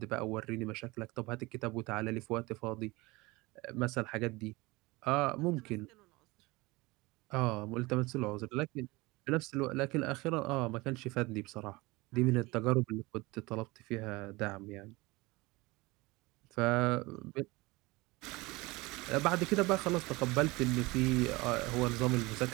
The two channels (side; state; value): left; quieter; 22.8 dB